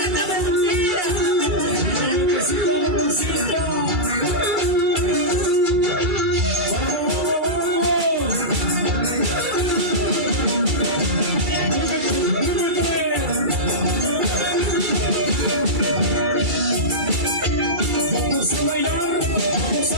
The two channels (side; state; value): left; late; 2.3 ms